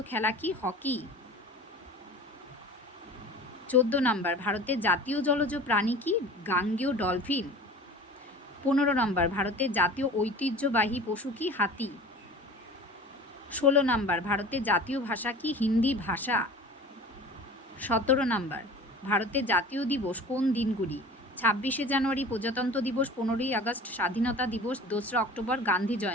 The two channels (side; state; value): both; normal; correlation 0.40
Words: খেলা কি? হকি। 14 নাম্বার, ভারতের জাতীয় জলজ প্রাণী কি? গাঙ্গেয় ডলফিন। 15 নাম্বার, ভারতের জাতীয় ঐতিহ্যবাহী পশু কি? হাতি। 16 নাম্বার, ভারতের জাতীয় ভাষা কি? হিন্দি ভাষা। 17 নাম্বার, ভারতের জাতীয় দিবস কোন দিনগুলি? 26শে জানুয়ারি প্রজাতন্ত্র দিবস, 15ই আগস্ট স্বাধীনতা দিবস, 2রা অক্টোবর গান্ধী